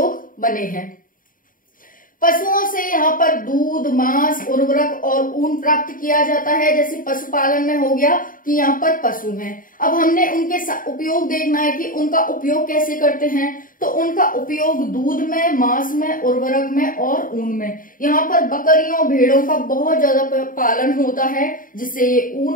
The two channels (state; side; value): late; right; 0.40 ms